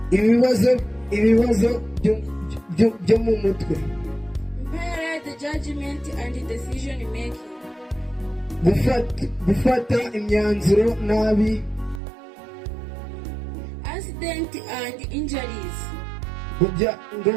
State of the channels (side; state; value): left; drops out; at 12.0 s